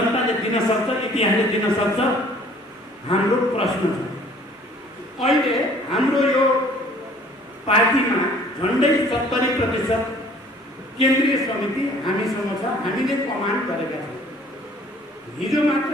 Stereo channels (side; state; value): both; normal; correlation 0.54